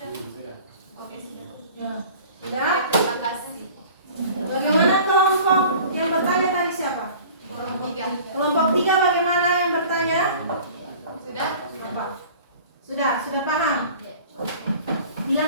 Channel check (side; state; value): both; inverted; correlation -0.45